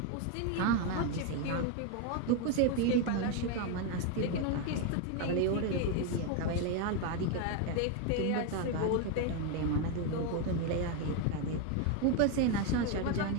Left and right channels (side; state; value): both; different; correlation 0.02